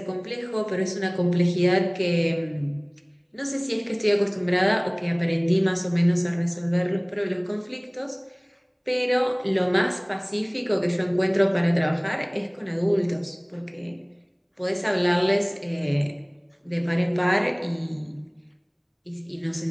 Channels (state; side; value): identical; both; correlation 1.00